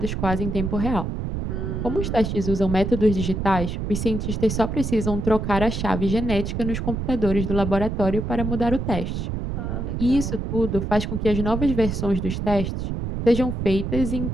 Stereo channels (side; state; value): right; noise; rumble, 3 dB below the sound